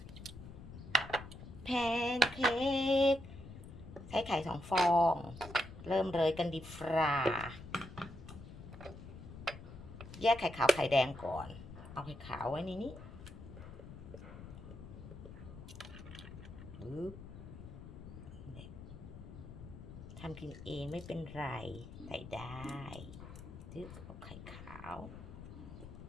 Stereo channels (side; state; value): left; noise; rumble, 13 dB below the sound